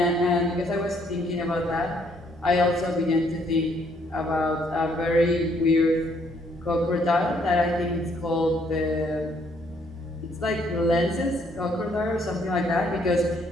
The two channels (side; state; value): both; normal; correlation 0.68